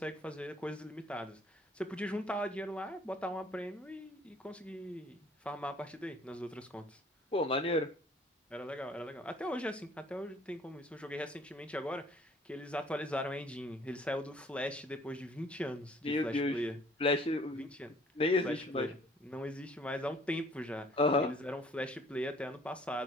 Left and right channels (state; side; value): normal; both; correlation 0.57